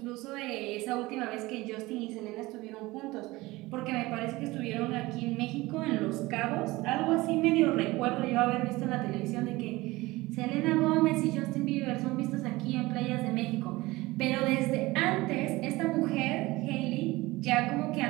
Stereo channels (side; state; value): left; quieter; 20.3 dB